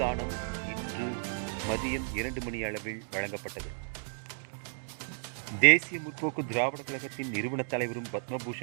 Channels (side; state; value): left; silent; digital silence